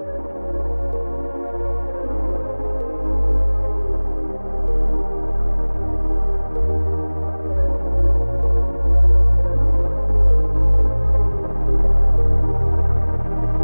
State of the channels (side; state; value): both; inverted; correlation -1.00